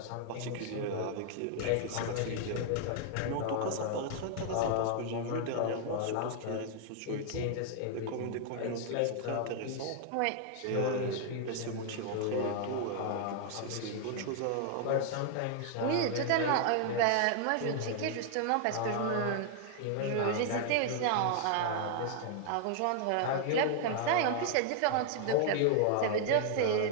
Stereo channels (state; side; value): different; both; correlation 0.00